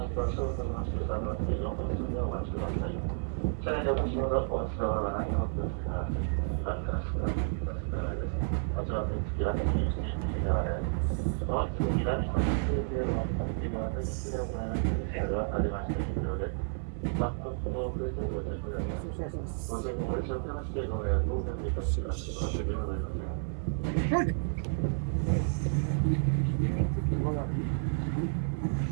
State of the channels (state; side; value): silent; left; 57 dB below the other